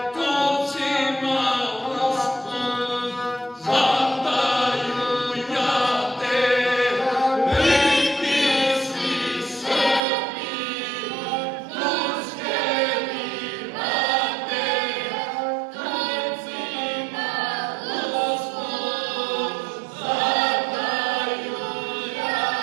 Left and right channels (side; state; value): left; drops out; at 10.0 s